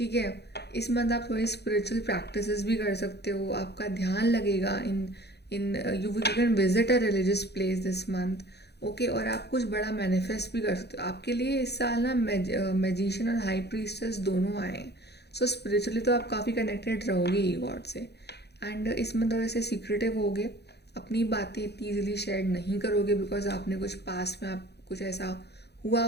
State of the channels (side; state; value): right; late; 0.48 ms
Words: है। इस मंथ आप थोड़ी स्पिरिचुअल प्रैक्टिसेस भी कर सकते हो, आपका ध्यान लगेगा in you can visit a religious place this month, okay. और आप कुछ बड़ा मैनिफेस्ट भी कर सकते हो। आपके लिए इस साल ना मैजिशियन और हाई प्रीस्टेस दोनों आए हैं, सो स्पिरिचुअली तो आप काफ़ी कनेक्टेड रहोगे ही गॉड से। एंड इसमें थोड़े से सीक्रेटिव होगे, अपनी बातें इतनी ईजिली शेयर नहीं करोगे बिकॉज आपने कुछ पास्ट में आप कुछ ऐसा हुआ